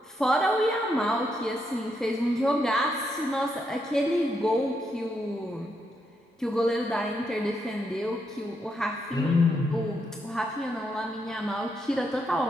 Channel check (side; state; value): both; normal; correlation 0.80